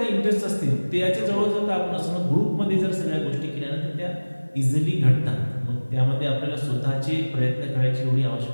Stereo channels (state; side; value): inverted; both; correlation -1.00